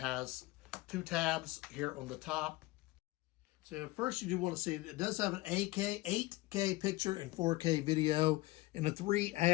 two tabs here on the top. So first you do want to see, it does have an 8K picture and 4K video and a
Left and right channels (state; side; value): quieter; right; 20.0 dB